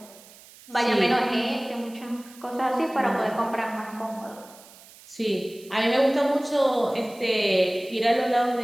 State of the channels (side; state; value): right; noise; hiss, 22 dB below the sound